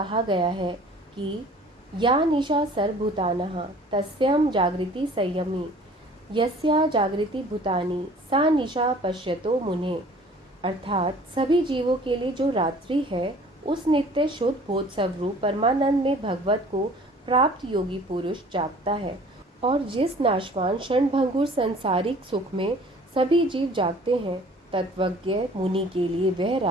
गया है कि या निशा सर्वभूतानः तस्यां जागृति संयमी, यस्या जागृति भूतानि सा निशा पश्यतो मुने। अर्थात सभी जीवों के लिए जो रात्रि है, उस नित्य शुद्ध बोध स्वरूप परमानंद में भगवत को प्राप्त योगी पुरुष जागता है, और जिस नाशवान क्षणभंगुर संसारिक सुख में सभी जीव जागते हैं, तत्वज्ञ मुनि के लिए वह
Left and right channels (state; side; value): normal; both; correlation 0.50